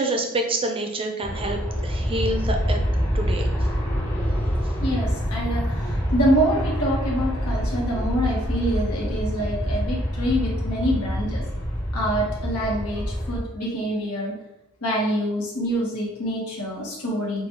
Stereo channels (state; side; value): normal; both; correlation 0.67